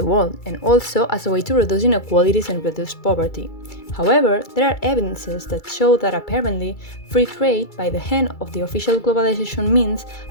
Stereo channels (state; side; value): late; right; 2.3 ms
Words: world, and also as a way to reduce inequalities and reduce poverty. However, there are evidences that show that apparently free trade by the hand of the official globalization means